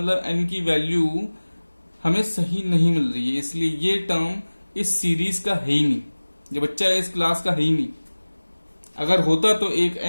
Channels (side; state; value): both; inverted; correlation -1.00